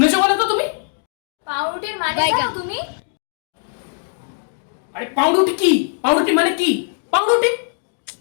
বলো তো তুমি? পাউরুটির মানে জানো তুমি? আরে পাউরুটি কি? পাউরুটি মানে কি? পাউরুটি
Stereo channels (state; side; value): silent; right; digital silence